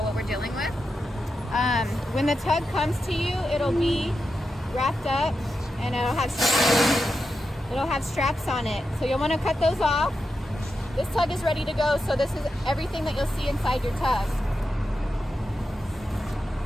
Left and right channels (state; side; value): normal; both; correlation 0.88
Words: what we're dealing with. When the tug comes to you, it'll be wrapped up and it'll have straps on it. So you'll want to cut those off. This tug is ready to go, so this is everything that you'll see inside your tug.